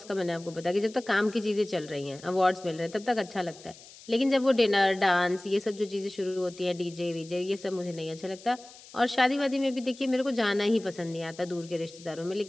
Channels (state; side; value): noise; left; hiss, 20 dB below the sound